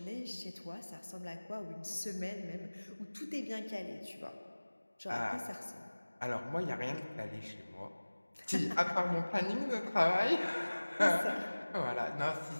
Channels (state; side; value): inverted; both; correlation -1.00